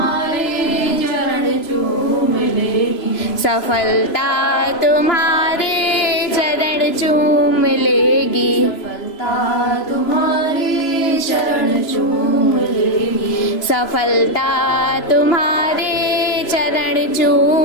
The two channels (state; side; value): late; right; 3.0 ms